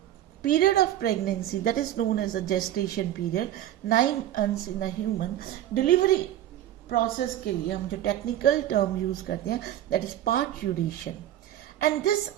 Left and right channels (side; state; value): left; quieter; 12.5 dB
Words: of pregnancy, that is known as a gestation period, 9 months in a human. Delivery process के लिए हम जो technical term use करते हैं that is parturition, and this